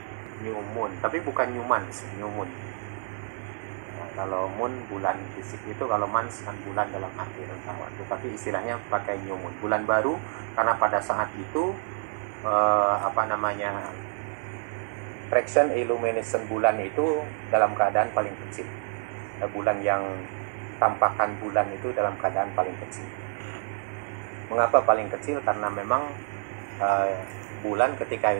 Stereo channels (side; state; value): left; silent; digital silence